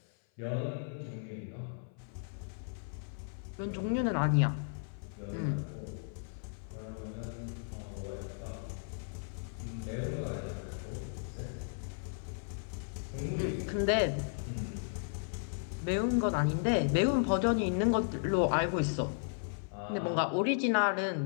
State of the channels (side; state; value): right; silent; 54 dB below the other